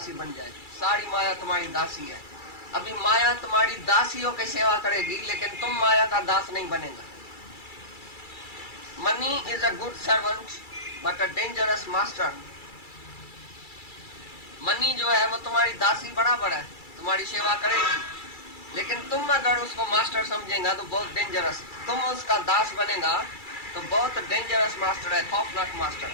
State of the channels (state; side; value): late; right; 2.3 ms